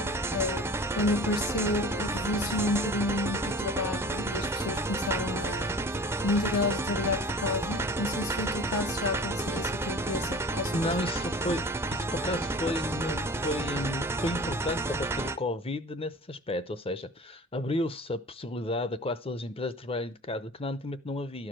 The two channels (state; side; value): normal; both; correlation 0.40